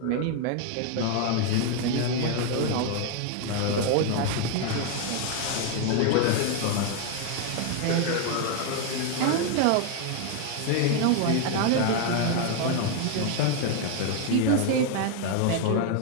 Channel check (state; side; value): different; both; correlation 0.01